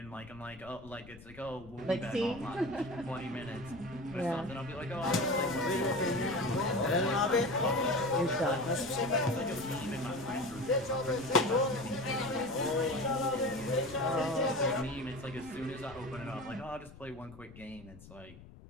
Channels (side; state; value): left; noise; rumble, 19 dB below the sound